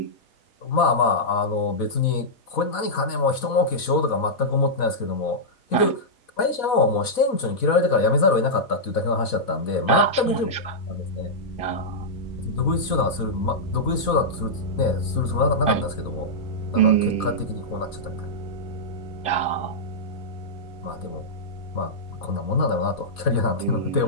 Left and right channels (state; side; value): late; right; 4.1 ms